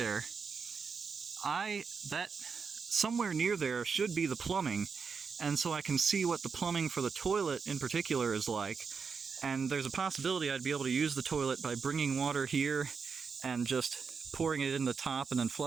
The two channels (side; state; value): left; quieter; 5.6 dB